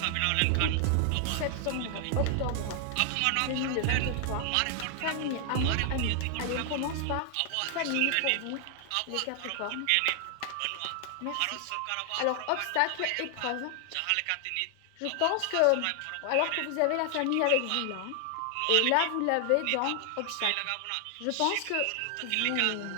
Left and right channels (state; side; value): different; both; correlation 0.00